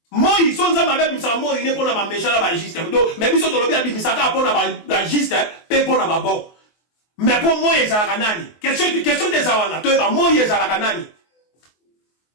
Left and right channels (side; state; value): right; late; 24 ms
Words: moi so nzambe abimisa moi ne pour na ba méchant na ba juste donc mais biso to lobi abimisa ka pour na ba juste pe pour na ba bon. Mais pour moi, il y a nani. Question des awana. Moi, il y a nani.